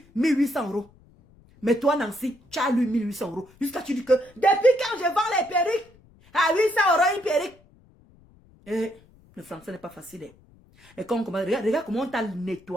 1800 €. Mais toi, Nancy, tu as lu 1800 €. Jusqu'à tu dis que, depuis quand je vends les perruques, à 800 € une perruque. Et le français n'est pas facile. Et quand on commence, regarde comment on t'a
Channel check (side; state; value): left; noise; rumble, 28 dB below the sound